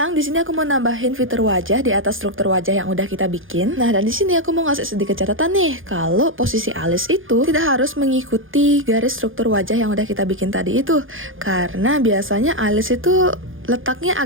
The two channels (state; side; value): late; left; 0.58 ms